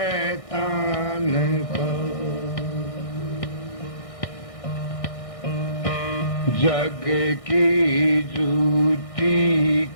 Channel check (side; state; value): right; late; 1.6 ms